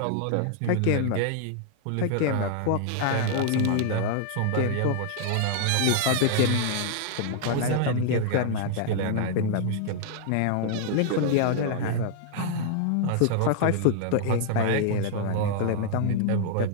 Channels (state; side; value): different; both; correlation -0.01